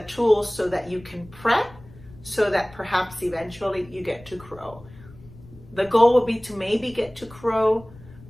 tools so that you can prep, so that perhaps eventually you get to crow. The goal will be to maybe get to crow,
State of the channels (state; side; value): noise; left; rumble, 21 dB below the sound